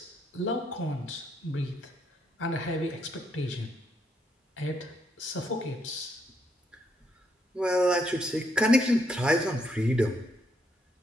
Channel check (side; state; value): both; normal; correlation 0.75